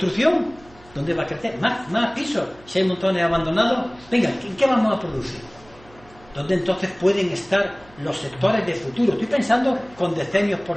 ¿Dónde va a crecer? Más pisos. Si hay montones abandonados, venga, ¿qué vamos a producir? ¿Dónde entonces pueden estar los sectores de futuro? Estoy pensando con decenios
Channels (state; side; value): noise; right; hum, 25 dB below the sound